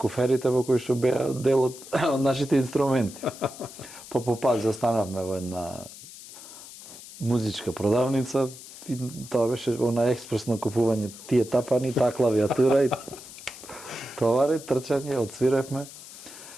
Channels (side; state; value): left; noise; hiss, 16 dB below the sound